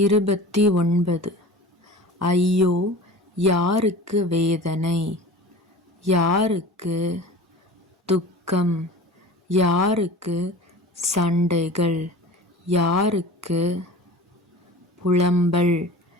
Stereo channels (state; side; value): normal; both; correlation 0.38